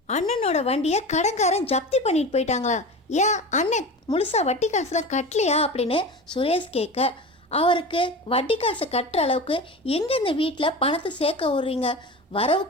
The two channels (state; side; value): normal; both; correlation 0.30